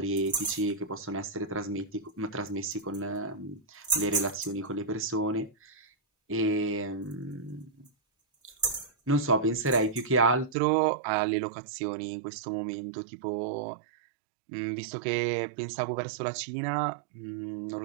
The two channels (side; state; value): left; drops out; at 10.6 s